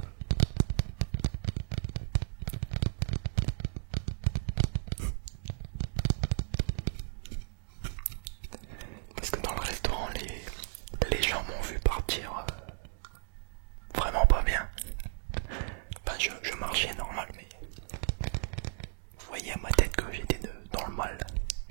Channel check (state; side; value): silent; left; digital silence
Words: Parce que dans le restaurant, les gens m'ont vu partir vraiment pas bien. Enfin, je marchais normal, mais vous voyez à ma tête que j'étais dans le mal.